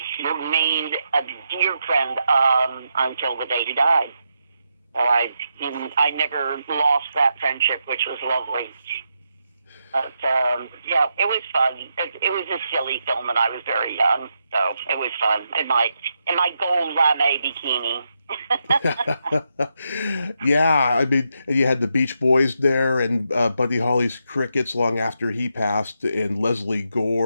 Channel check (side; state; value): both; inverted; correlation -0.83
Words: remained a dear friend until the day he died. So I never lost that friendship, which was lovely. But yeah, it was fun. It was a silly film, and I was very young, so it was fun. In my gold lame bikini. Yeah, I mean, you had the Beach Boys there, and Buddy Holly's Crickets long after he passed, and Leslie